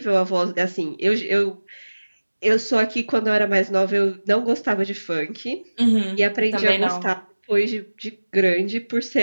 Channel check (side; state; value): both; inverted; correlation -1.00